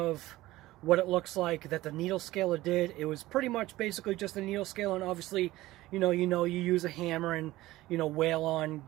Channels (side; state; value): left; quieter; 17.2 dB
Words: what it looks like that the needle scaler did. It was pretty much basically just a needle scaler, and obviously, you use a hammer and, wail on